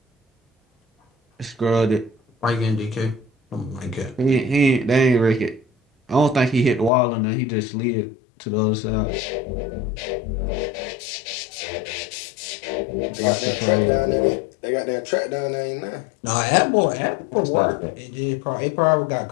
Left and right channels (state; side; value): drops out; right; at 6.9 s